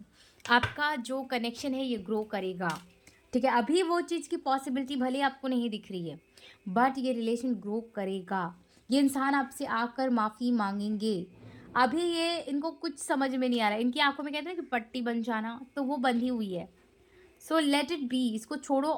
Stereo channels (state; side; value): identical; both; correlation 1.00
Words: आपका जो कनेक्शन है ये ग्रो करेगा, ठीक है? अभी वो चीज़ की पॉसिबिलिटी भले आपको नहीं दिख रही है, बट ये रिलेशन ग्रो करेगा। ये इंसान आपसे आकर माफ़ी मांगेंगे। अभी ये इनको कुछ समझ में नहीं आ रहा है। इनकी आंखों में कहते हैं कि पट्टी बन जाना, तो वो बंधी हुई है। सो लेट इट बी, इसको छोड़ो